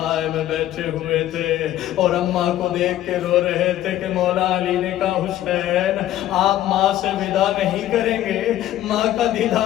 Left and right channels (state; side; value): quieter; right; 13.2 dB